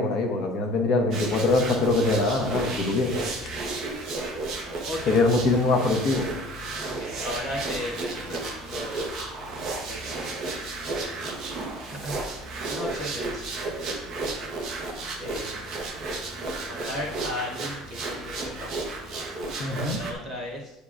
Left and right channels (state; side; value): normal; both; correlation 0.47